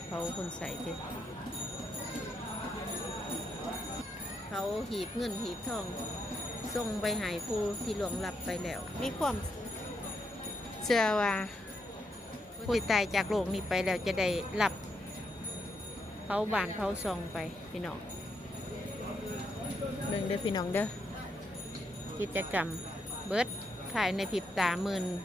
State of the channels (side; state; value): both; normal; correlation 0.79